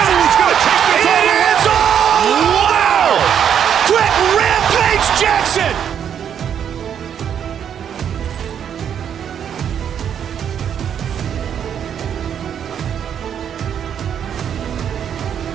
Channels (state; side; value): quieter; left; 8.7 dB